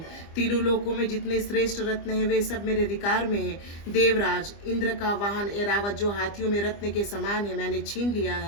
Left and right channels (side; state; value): right; late; 25 ms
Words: तीनों लोकों में जितने श्रेष्ठ रत्न हैं वे सब मेरे अधिकार में है। देवराज, इंद्र का वाहन ऐरावत जो हाथियों में रत्न के समान है, मैंने छीन लिया